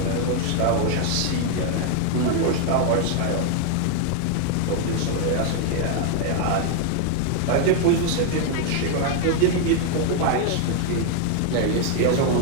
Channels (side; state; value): both; different; correlation 0.00